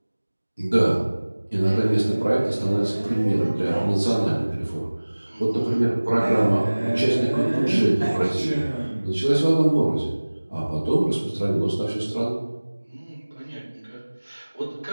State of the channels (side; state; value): both; inverted; correlation -1.00